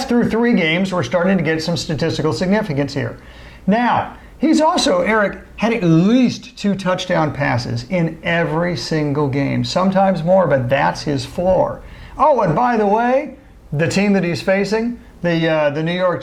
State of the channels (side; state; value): both; identical; correlation 1.00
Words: through 3 games. We're starting to get some statistical significance here. Now, he's also, Eric, had at least 2 touchdown passes in every single game. Sometimes more, but that's his floor. Oh, and by the way, the team that he's facing, the New York